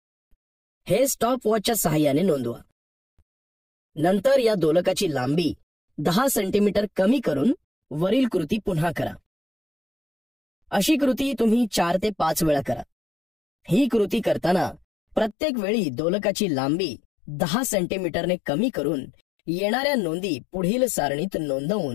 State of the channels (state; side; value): drops out; right; at 15.4 s